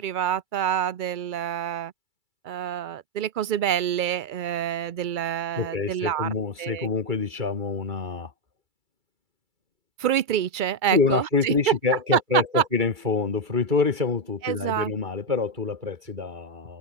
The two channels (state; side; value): late; left; 2.3 ms